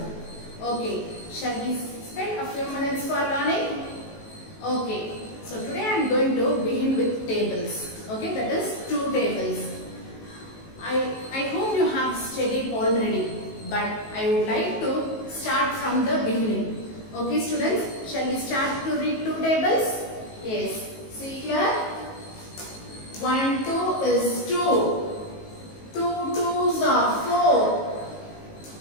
Okay, shall we spend a few minutes for learning? Okay, so today I am going to begin with tables. Okay, that is two tables. I hope you have studied already, but I would like to start from the beginning. Okay students, shall we start to read two tables? Yes, see here. 1, 2 is 2. 2 2s are 4,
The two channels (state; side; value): late; right; 19 ms